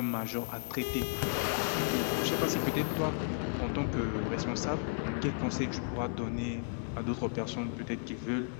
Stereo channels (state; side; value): silent; right; 55 dB below the other